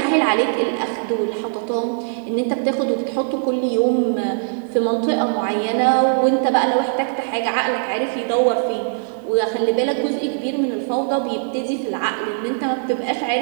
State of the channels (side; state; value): left; silent; digital silence